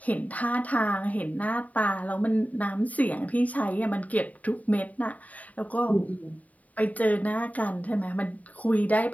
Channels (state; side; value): late; right; 0.072 ms